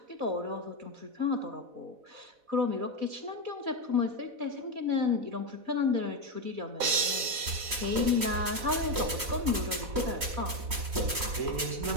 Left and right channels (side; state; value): left; late; 4.1 ms